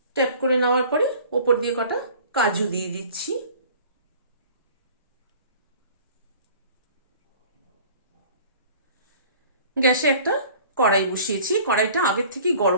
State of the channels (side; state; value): both; inverted; correlation -0.47